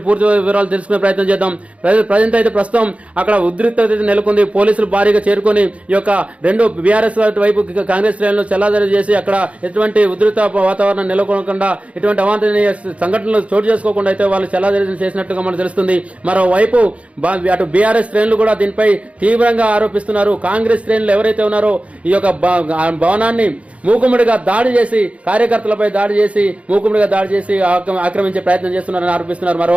పూర్తి వివరాలు తెలుసుకునే ప్రయత్నం చేద్దాం. ప్రజెంట్ అయితే ప్రస్తుతం అక్కడ ఉద్రిక్తత నెలకొంది. పోలీసులు భారీగా చేరుకొని ఈ యొక్క రెండు బీఆర్ఎస్ వైపు కాంగ్రెస్ శ్రేణులు చెల్లాదరి చేసి అక్కడ ఎటువంటి ఉద్రిక్త వాతావరణం నెలకొనకుండా ఎటువంటి అవాంఛనీయ సంఘటనలు చోటు చేసుకోకుండా అయితే వాళ్ళు చెల్లాదరి చేసినట్టుగా మనకు తెలుస్తుంది. మరోవైపు అటు బీఆర్ఎస్ శ్రేణులు కూడా దీనిపై తీవ్రంగా ఆరోపిస్తున్నారు. కాంగ్రెస్ శ్రేణులు ఎవరైతే ఉన్నారో ఈ యొక్క భవనాన్ని మూకుముడిగా దాడి చేసి కార్యకర్తలపై దాడి చేసి మూకుముడిగా దాడి చేసి ఆక్రమించే ప్రయత్నం చేస్తున్నారని ఆరోపిస్తున్నారు.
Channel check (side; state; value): left; late; 0.064 ms